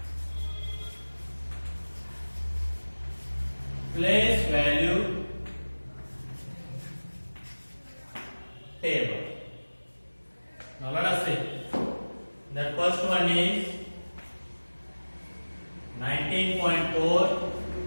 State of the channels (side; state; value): both; inverted; correlation -1.00